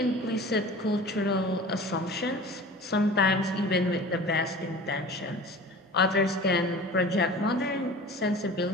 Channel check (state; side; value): normal; both; correlation 0.39